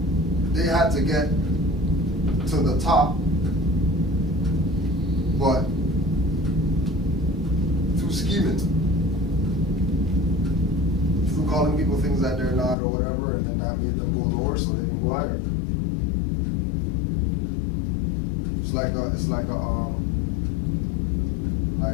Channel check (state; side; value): drops out; right; at 12.8 s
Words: They had to get to the top, but through scheming, through calling people things that they're not or whatever, and then that made them go lower so they can go higher. It's like